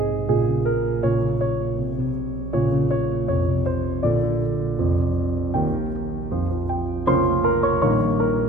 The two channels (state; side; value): noise; right; hum, 8 dB below the sound